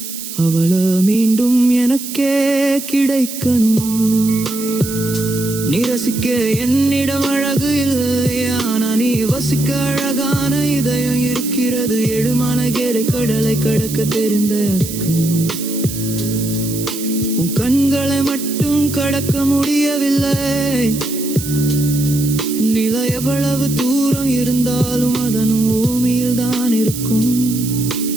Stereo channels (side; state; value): right; noise; hiss, 9 dB below the sound